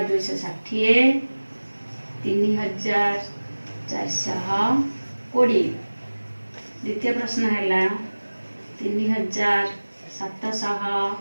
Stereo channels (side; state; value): both; inverted; correlation -1.00